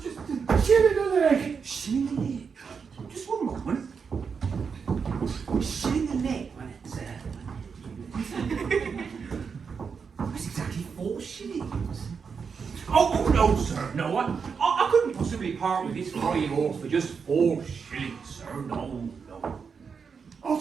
shilling a leg? Shilling a leg? Just one moment. Shilling a leg when it's that's exactly 4 shillings. Oh no, sir, no. I couldn't possibly part with this fine horse for just 4 shillings, sir. No. I'll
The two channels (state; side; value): quieter; left; 5.9 dB